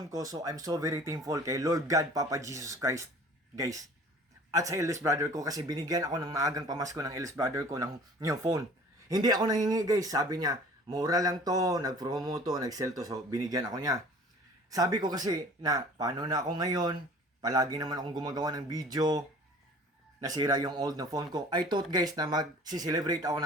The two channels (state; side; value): normal; both; correlation 0.47